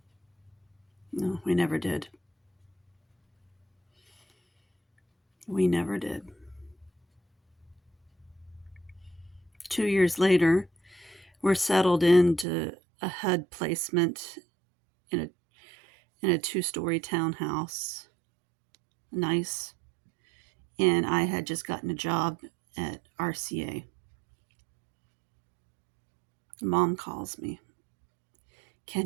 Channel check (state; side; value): drops out; left; at 12.5 s